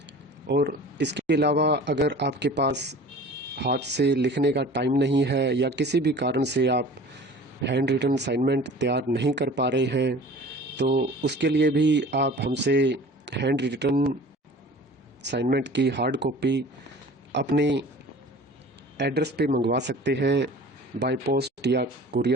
और इसके अलावा अगर आपके पास हाथ से लिखने का टाइम नहीं है या किसी भी कारण से आप हैंड रिटन असाइनमेंट तैयार नहीं कर पा रहे हैं, तो उसके लिए भी आप हमसे हैंड रिटन असाइनमेंट की हार्ड कॉपी अपने एड्रेस पे मंगवा सकते हैं बाय पोस्ट या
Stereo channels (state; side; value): normal; both; correlation 0.43